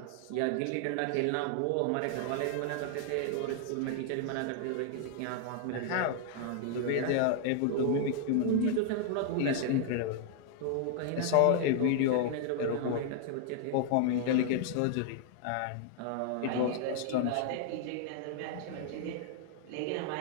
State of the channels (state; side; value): different; both; correlation 0.00